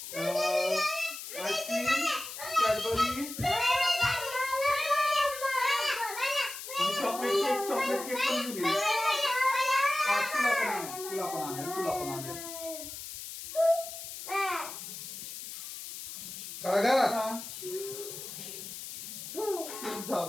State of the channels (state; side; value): noise; left; hiss, 9 dB below the sound